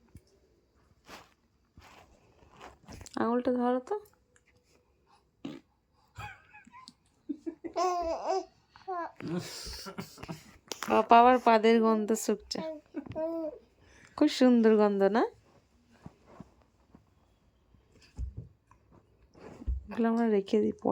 আঙুলটা ধরো তো। পাপা আবার পাদের গন্ধ শুকছে, খুব সুন্দর গন্ধ না? এগুলো আমরা রেখে দিই,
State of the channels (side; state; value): both; identical; correlation 1.00